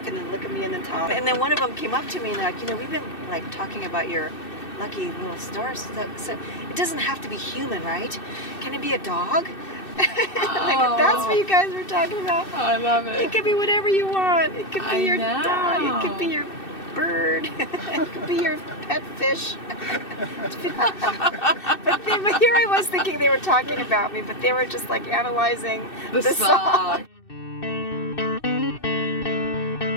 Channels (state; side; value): late; right; 2.6 ms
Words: and then look at me and then talk. And then one of them came up to me and like, you know, we've been like talking about your lucky little stars. So it doesn't have to be human, right? Can it be a dog? Like, that's what you guys were talking about. Oh, I love it. It could be whatever you want. It could be I your know. dog. It could be your bird. It could be your pet fish. but here I was thinking they were talking about me, but they were just like analyzing The song.